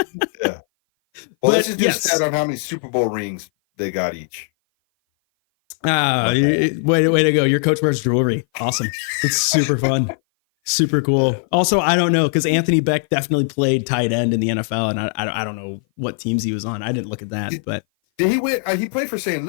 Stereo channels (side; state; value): right; silent; 58 dB below the other